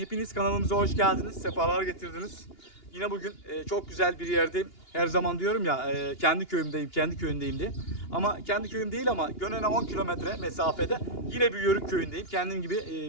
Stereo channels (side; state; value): right; late; 2.9 ms